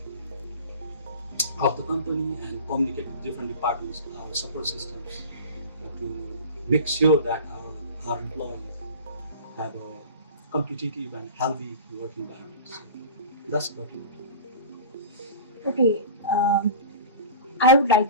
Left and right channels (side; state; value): both; inverted; correlation -0.36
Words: of the company and communicate with different departments, our support systems, to make sure that our employees have a competitive and healthy work environment. So that's about it. Okay, I would